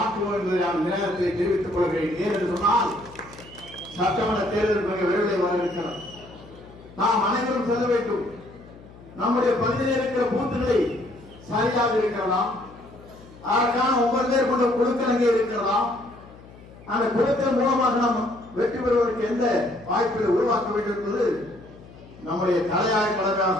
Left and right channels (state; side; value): noise; left; hum, 21 dB below the sound